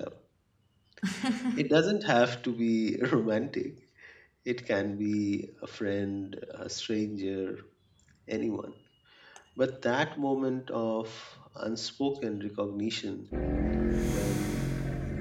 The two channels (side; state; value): both; identical; correlation 1.00